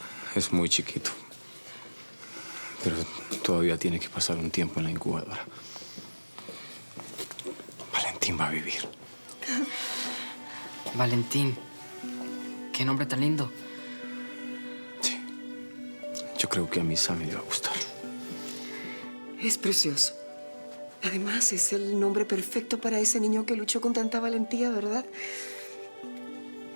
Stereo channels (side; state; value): both; inverted; correlation -1.00